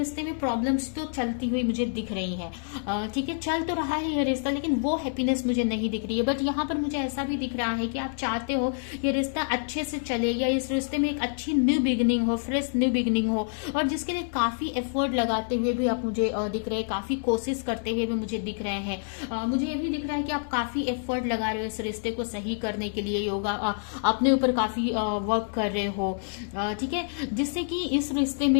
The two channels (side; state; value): right; silent; digital silence